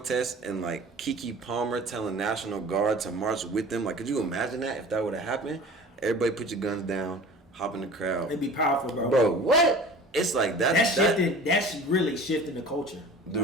and, like, Keke Palmer telling National Guard to march with them. Like, could you imagine that if that would have happened? Everybody put your guns down, hop in the crowd. It'd be powerful, bro. Bro, what? It's like that. That's really shifting the culture.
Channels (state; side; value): normal; both; correlation 0.42